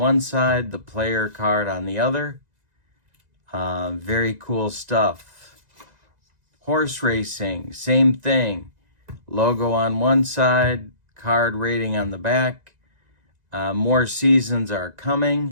side, the player card on the other. Very cool stuff. Horse racing, same thing. Logo on one side, card rating on the back. More seasons are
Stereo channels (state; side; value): late; left; 2.0 ms